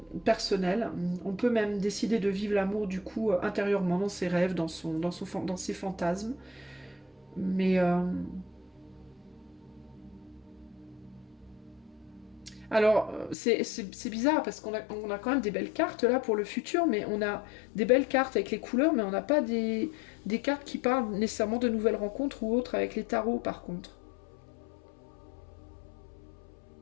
personnel. On peut même décider de vivre l'amour du coup intérieurement, dans ses rêves, dans ses fantasmes. Mais... Alors, c'est bizarre parce on a quand même des belles cartes là pour le futur, mais on a des belles cartes avec les couleurs, mais on n'a pas des cartes qui parlent nécessairement de nouvelles rencontres ou autres avec les tarots par contre.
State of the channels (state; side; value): drops out; right; at 13.4 s